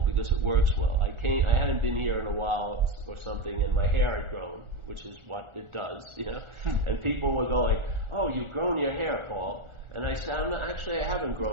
because it works well. I hadn't been here in a while or something, and my hair had grown, which is what it does, And people were going, "Oh, you've grown your hair, Paul." And I said, I haven't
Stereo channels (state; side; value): late; left; 1.4 ms